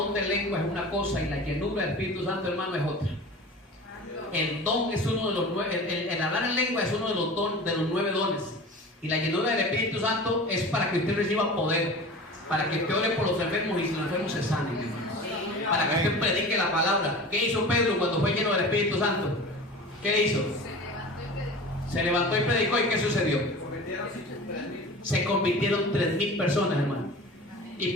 de lengua es una cosa y la llenura del Espíritu Santo, hermano, es otra. El don es uno de los 9, el hablar en lengua es uno de los 9 dones. Y la llenura del Espíritu Santo es para que usted reciba poder, para que usted ore por los enfermos y los enfermos se sanen, hermano. Para que usted predique la palabra. ¿Qué hizo Pedro cuando fue lleno del Espíritu Santo? ¿Qué hizo? Se levantó y predicó. ¿Y qué sucedió? Se convirtieron 3,000 personas, hermano. Y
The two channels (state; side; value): normal; both; correlation 0.36